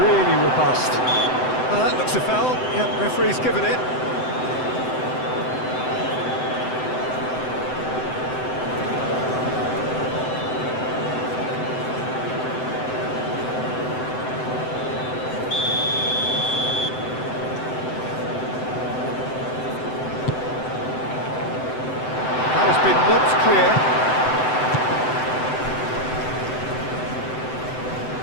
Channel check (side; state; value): right; late; 7.8 ms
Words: robust. Well, that looks a foul. Yep, referee's given it. That has been knocked clear.